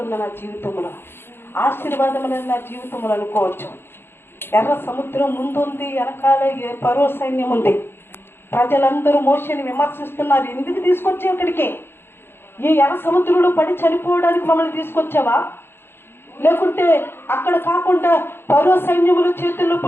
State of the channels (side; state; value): right; late; 0.11 ms